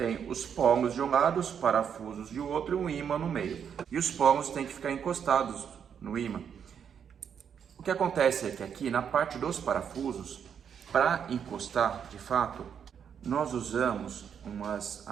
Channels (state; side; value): quieter; left; 7.8 dB